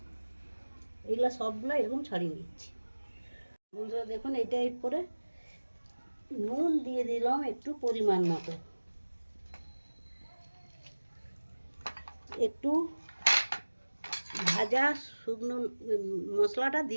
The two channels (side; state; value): both; inverted; correlation -1.00